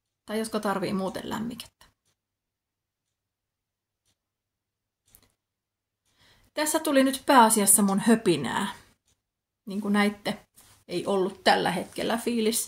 jotka tarvii muuten lämmikettä. Tässä tuli nyt pääasiassa mun höpinää. Niin kuin näitte, ei ollut tällä hetkellä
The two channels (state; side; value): identical; both; correlation 1.00